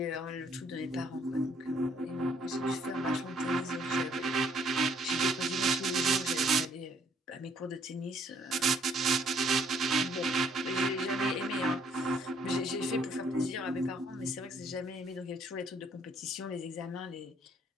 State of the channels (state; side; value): normal; both; correlation 0.64